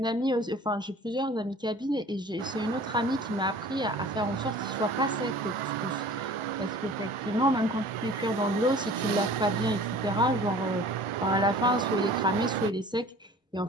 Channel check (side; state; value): both; normal; correlation 0.46